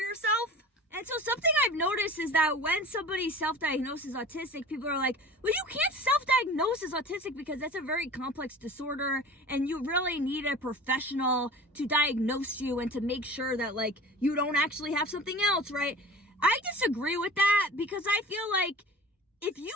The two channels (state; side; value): normal; both; correlation 0.40